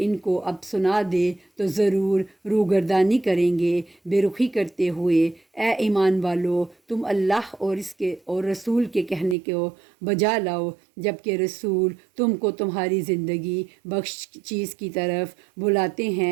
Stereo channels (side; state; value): left; drops out; at 9.3 s